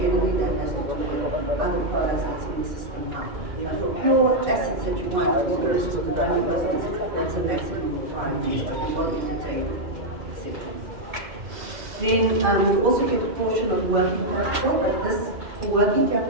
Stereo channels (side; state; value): left; late; 2.1 ms